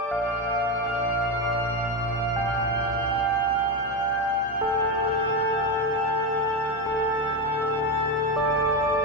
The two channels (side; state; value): both; normal; correlation 0.13